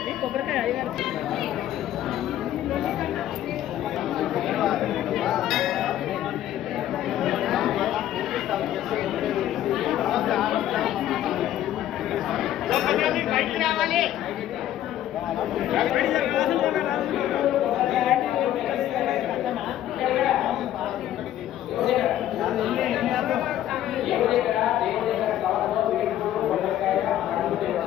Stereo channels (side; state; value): right; quieter; 12.3 dB